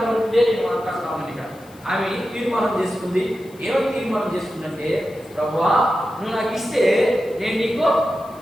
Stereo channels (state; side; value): noise; left; hiss, 26 dB below the sound